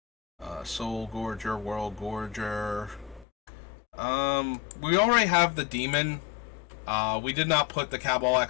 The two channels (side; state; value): right; drops out; at 3.2 s